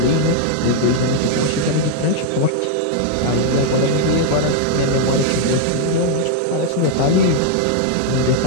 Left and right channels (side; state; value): both; different; correlation 0.00